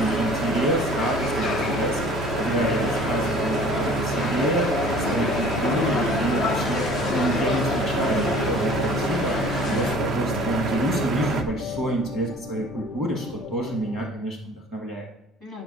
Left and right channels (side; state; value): both; normal; correlation 0.49